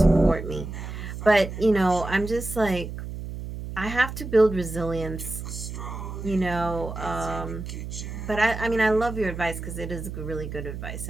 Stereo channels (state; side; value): noise; right; hum, 8 dB below the sound